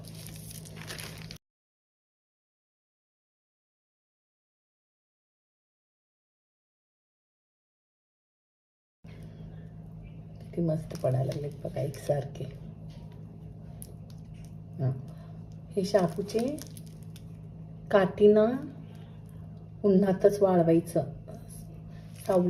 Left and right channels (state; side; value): identical; both; correlation 1.00